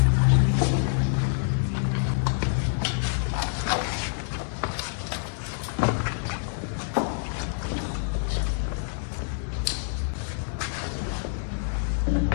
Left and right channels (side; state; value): right; silent; digital silence